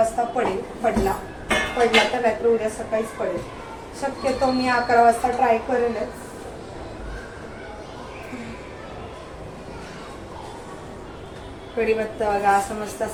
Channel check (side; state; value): both; identical; correlation 1.00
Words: पडला तर रात्री उद्या सकाळीच पडेल. शक्यतो मी 11 वाजता ट्राय करेलच. कढीपत्ता बघा असं मस्त